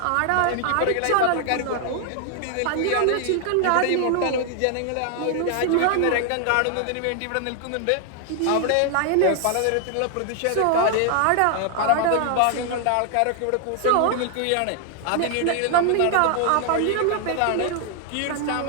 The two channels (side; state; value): both; different; correlation 0.00